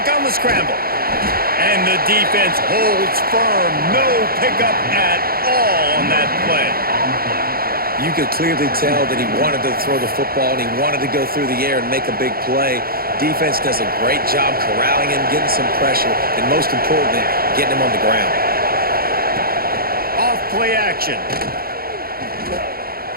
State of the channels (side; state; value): left; late; 0.44 ms